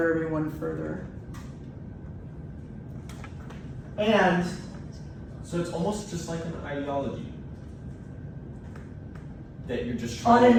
everyone further. And So it's almost just like an ideology that you're just On trying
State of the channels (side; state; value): both; identical; correlation 1.00